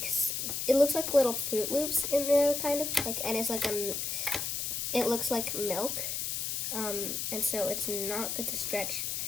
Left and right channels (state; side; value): noise; left; hiss, 2 dB below the sound